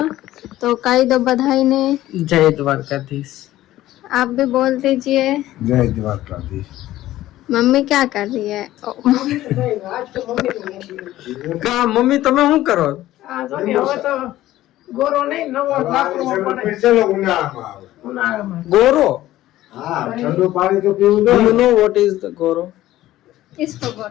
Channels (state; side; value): quieter; right; 14.9 dB